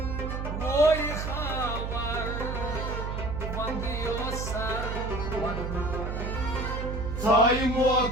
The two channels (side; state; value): right; noise; hum, 4 dB below the sound